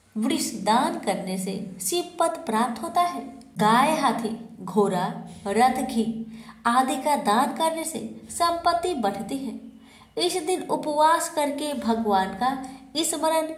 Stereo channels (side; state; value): both; identical; correlation 1.00